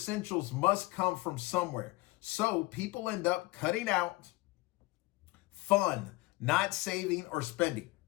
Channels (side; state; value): right; quieter; 21.4 dB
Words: must come from somewhere. So people end up cutting out fun, not saving or spending.